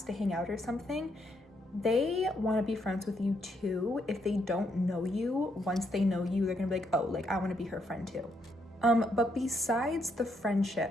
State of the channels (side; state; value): both; normal; correlation 0.76